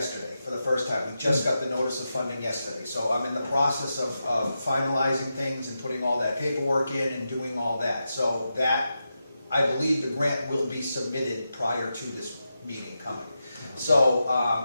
for the first time. We just got the notice of funding yesterday. So I'm in the process of finalizing things and putting all that paperwork in and doing all that. So that, I believe the grant will be submitted prior to this meeting coming. So,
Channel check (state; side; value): inverted; both; correlation -0.89